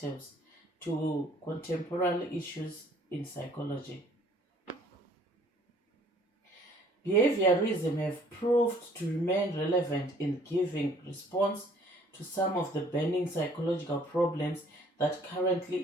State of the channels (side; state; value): both; normal; correlation 0.58